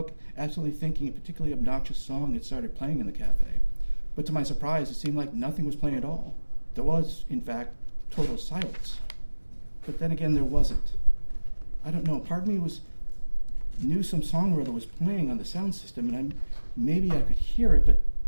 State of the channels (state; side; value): inverted; both; correlation -1.00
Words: absolutely thinking a particularly obnoxious song had started playing in the cafe. But to my surprise, it seemed like nothing was playing at all. There was, in fact, total silence. But then again, there wasn't. I don't know, part of me knew some song or other was playing on the sound system, and maybe I could hear it, but